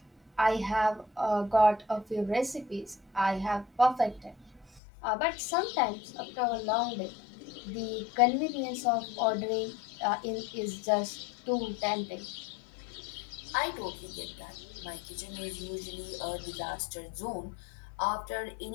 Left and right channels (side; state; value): right; drops out; at 4.8 s